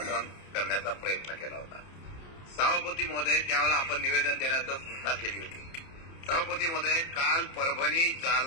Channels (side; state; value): right; late; 30 ms